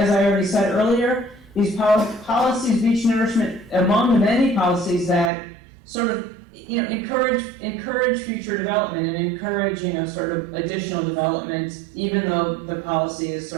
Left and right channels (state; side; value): drops out; left; at 5.3 s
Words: I already said earlier. These policies, beach nourishment, among the many policies that sort of, encourage future development and encourage, sort of additional development, even though the policy is